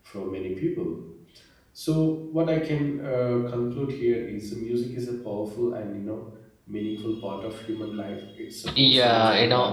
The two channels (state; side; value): identical; both; correlation 1.00